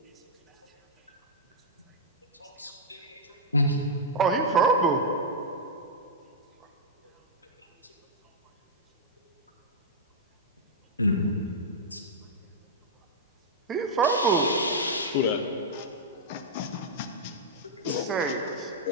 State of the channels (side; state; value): both; normal; correlation -0.07